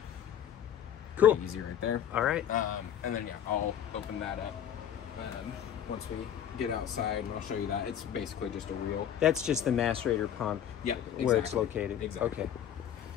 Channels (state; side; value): quieter; right; 9.6 dB